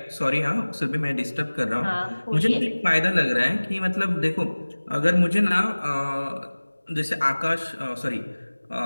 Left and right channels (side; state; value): both; inverted; correlation -1.00